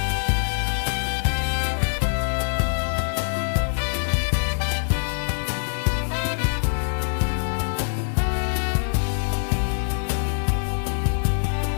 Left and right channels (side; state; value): right; silent; digital silence